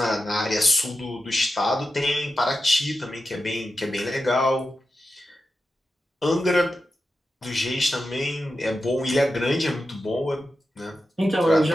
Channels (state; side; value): normal; both; correlation 0.90